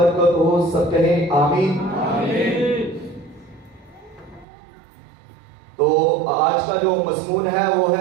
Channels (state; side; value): drops out; left; at 4.5 s